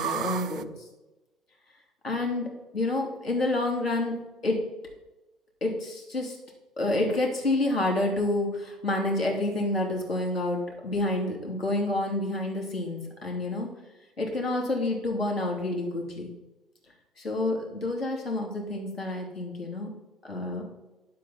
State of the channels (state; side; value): normal; both; correlation 0.44